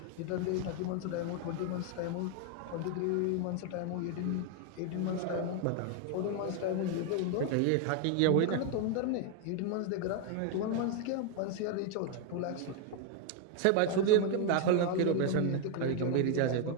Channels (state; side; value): different; both; correlation 0.01